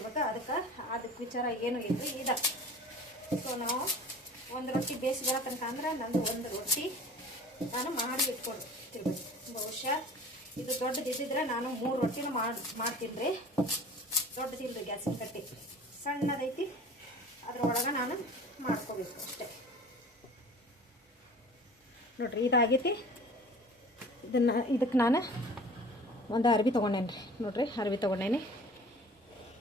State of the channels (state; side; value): normal; both; correlation 0.43